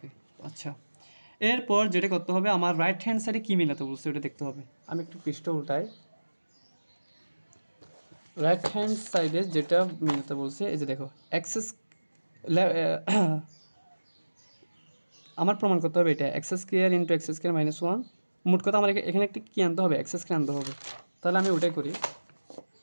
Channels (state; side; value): inverted; both; correlation -1.00